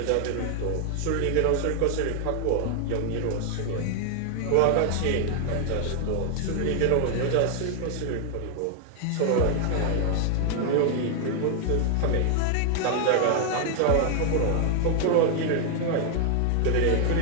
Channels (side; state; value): both; different; correlation 0.00